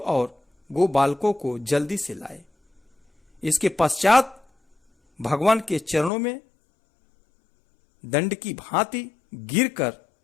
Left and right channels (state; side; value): drops out; right; at 6.1 s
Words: गो बालकों को जल्दी से लाए। इसके पश्चात भगवान के चरणों में दंड की भांति गिरकर